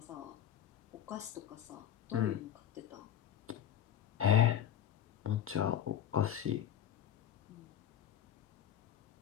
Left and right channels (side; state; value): right; quieter; 10.4 dB